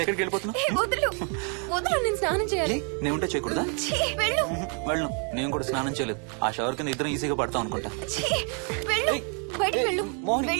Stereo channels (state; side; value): quieter; left; 39.9 dB